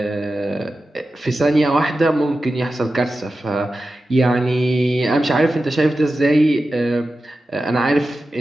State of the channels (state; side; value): normal; both; correlation 0.93